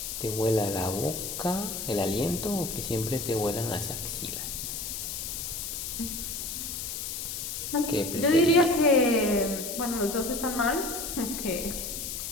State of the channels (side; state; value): left; noise; hiss, 5 dB below the sound